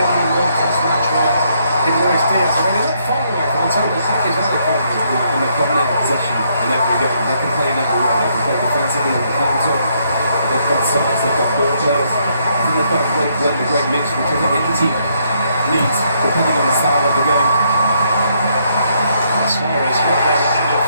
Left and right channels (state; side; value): inverted; both; correlation -0.72